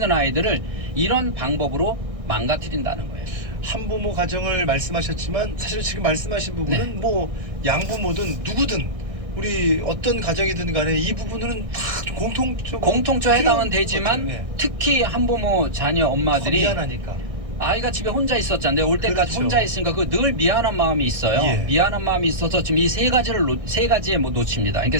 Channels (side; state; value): left; late; 1.6 ms